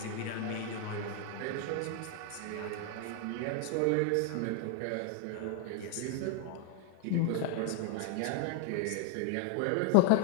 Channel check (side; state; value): both; different; correlation 0.00